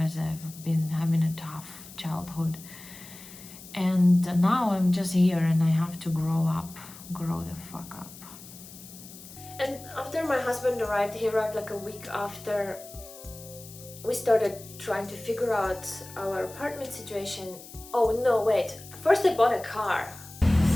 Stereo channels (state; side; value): noise; left; hiss, 17 dB below the sound